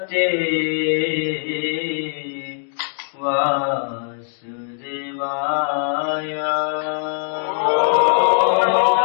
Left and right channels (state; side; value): silent; right; digital silence